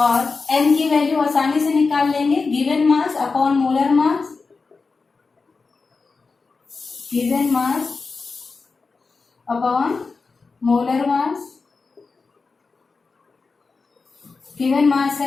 m की वैल्यू आसानी से निकाल लेंगे, given mass upon molar mass, given mass upon molar mass, given mass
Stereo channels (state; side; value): quieter; right; 4.4 dB